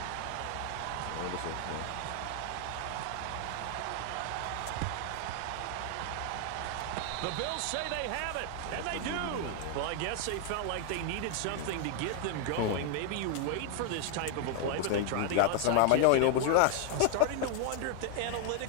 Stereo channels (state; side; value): different; both; correlation 0.00